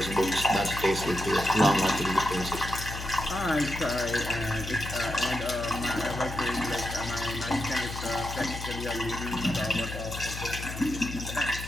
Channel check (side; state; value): left; noise; hum, 8 dB below the sound